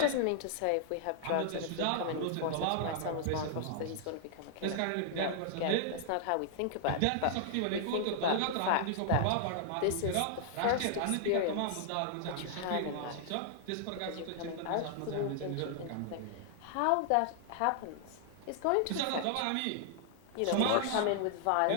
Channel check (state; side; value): different; both; correlation -0.01